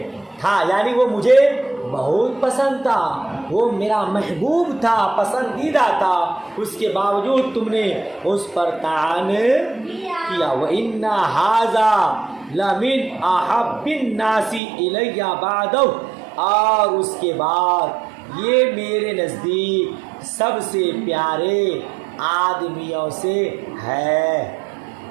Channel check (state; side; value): drops out; left; at 14.6 s